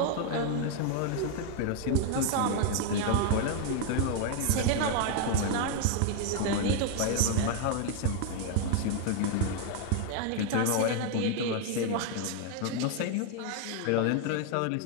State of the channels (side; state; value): both; different; correlation 0.00